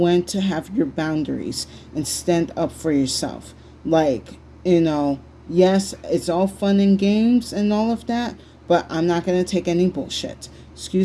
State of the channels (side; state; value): both; identical; correlation 1.00